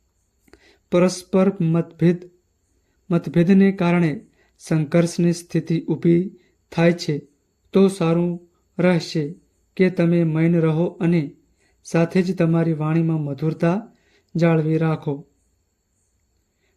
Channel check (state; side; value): identical; both; correlation 1.00